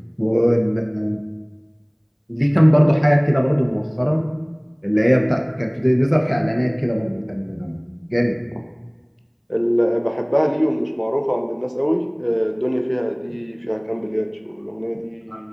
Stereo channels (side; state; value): both; identical; correlation 1.00